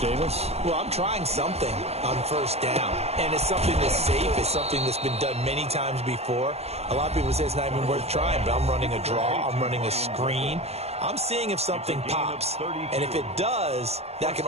Well, I'm trying something on 1st down, and it's something that's safe. It's something that's been done many times before. A lot of people say it's not even worth trying, but I'm running a draw. I'm running a screen. I'm seeing if something pops, and if it does, that can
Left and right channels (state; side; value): late; left; 0.30 ms